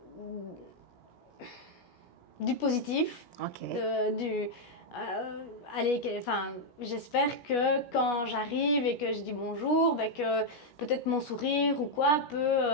du positif, j'espère que quand j'arrive et que je dis bonjour, que peut-être mon sourire ou quoi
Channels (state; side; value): late; right; 16 ms